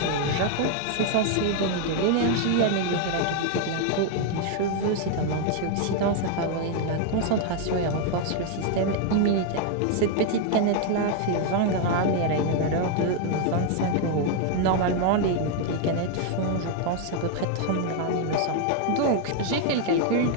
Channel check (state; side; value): different; both; correlation 0.00